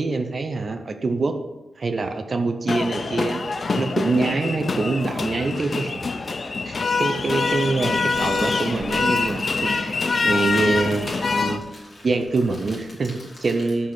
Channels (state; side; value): normal; both; correlation 0.88